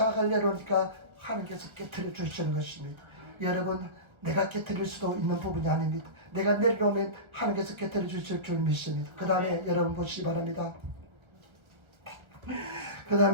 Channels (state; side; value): late; left; 1.3 ms